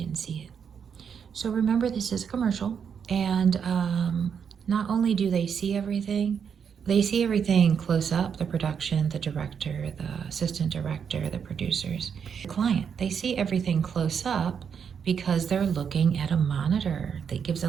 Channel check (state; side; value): quieter; left; 7.1 dB